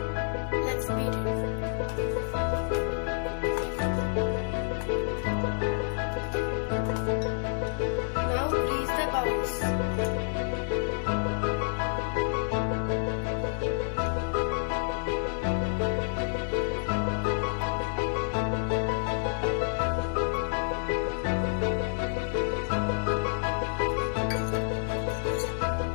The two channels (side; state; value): right; silent; digital silence